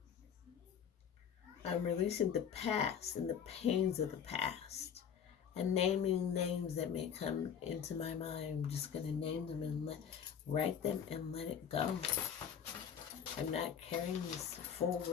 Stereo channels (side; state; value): right; quieter; 8.1 dB